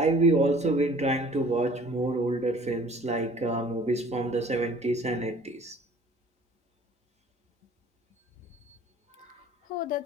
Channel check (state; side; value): normal; both; correlation 0.50